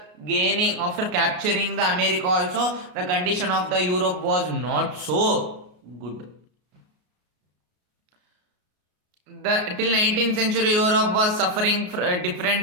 capturing the America also. The condition of the Europe was not so good. Till 19th century, Europe was suffering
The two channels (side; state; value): left; late; 33 ms